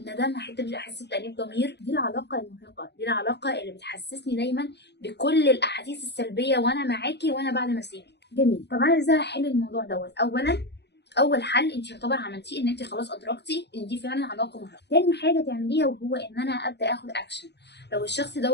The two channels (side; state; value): right; late; 0.49 ms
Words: هحس بتأنيب ضمير. دي العلاقة المرهقة، دي العلاقة اللي بتحسسني دايما بكل الأحاسيس السلبية وأنا معاكي وأنا بعد ما أسيبك. جميل. طب أنا إزاي هحل الموضوع دوت؟ أولا، أول حل أنت يعتبر عملتيه إن أنت خلاص أدركتي إن دي فعلا علاقة مرهقة. تاني حاجة تعمليها وهو إن أنا أبدأ آخد أكشن. لو الشخص